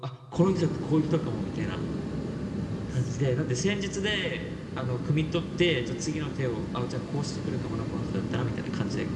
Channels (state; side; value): identical; both; correlation 1.00